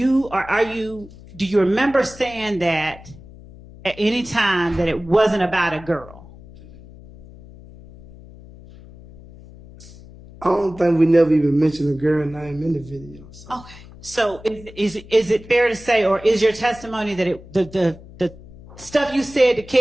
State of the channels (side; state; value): left; noise; hum, 19 dB below the sound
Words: remember saying that at any time that it wasn't about a girl? I don't think we never even mentioned a girl name in the video. So. Okay. So is it fair to say, or is your testimony that the stuff you said to